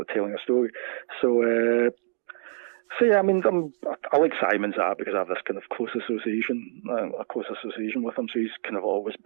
of telling a story. So yeah, I mean, I like Simon's art because I have this kind of close association with him. So he's kind of always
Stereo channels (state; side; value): silent; left; 61 dB below the other